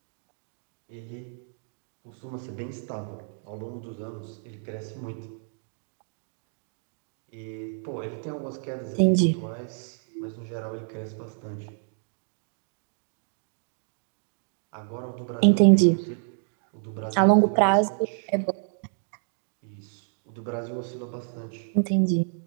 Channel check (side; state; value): left; silent; digital silence